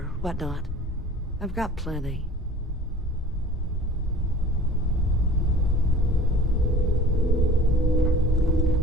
whatnot. I've got plenty.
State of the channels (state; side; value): normal; both; correlation 0.46